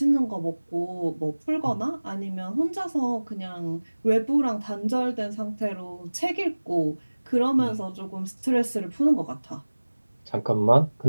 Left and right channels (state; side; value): inverted; both; correlation -1.00